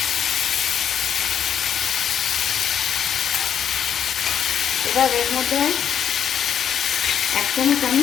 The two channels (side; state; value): right; quieter; 8.7 dB